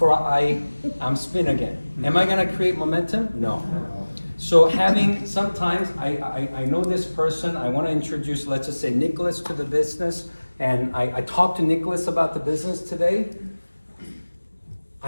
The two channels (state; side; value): inverted; both; correlation -1.00